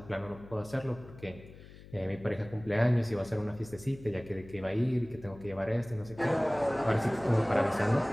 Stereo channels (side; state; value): left; noise; hum, 18 dB below the sound